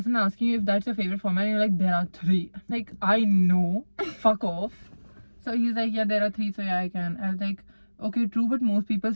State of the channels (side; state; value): both; inverted; correlation -1.00